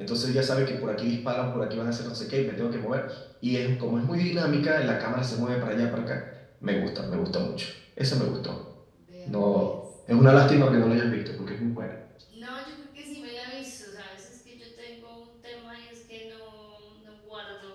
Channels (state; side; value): identical; both; correlation 1.00